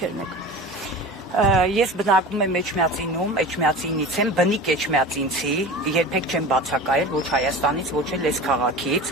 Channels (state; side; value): normal; both; correlation 0.34